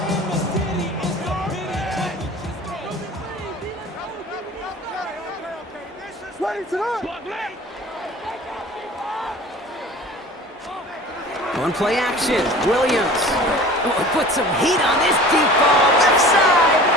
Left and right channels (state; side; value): normal; both; correlation 0.42